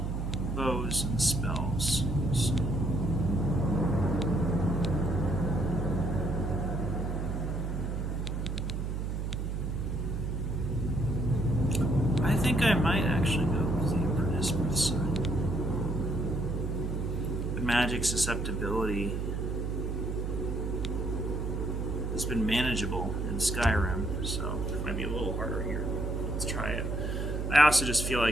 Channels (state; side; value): noise; right; hum, 2 dB below the sound